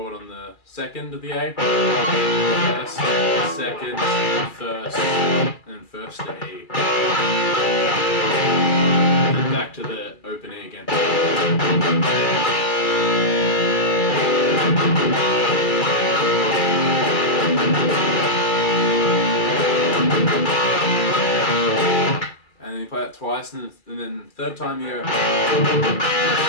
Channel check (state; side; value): late; right; 2.3 ms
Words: on the second of the A. First, second, first, and then first to E. Then back to the open E again. And then you play that twice, and then third time you go.